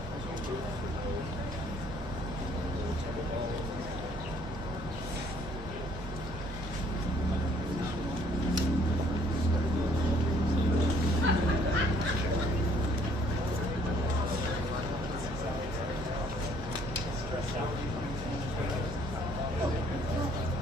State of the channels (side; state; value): both; normal; correlation 0.61